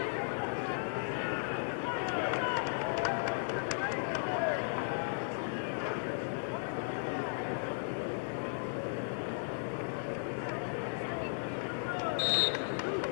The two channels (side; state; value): right; silent; digital silence